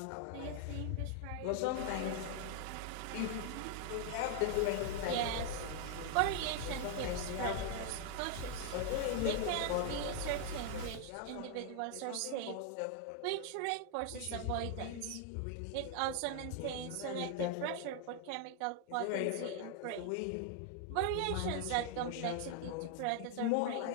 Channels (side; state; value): both; different; correlation 0.00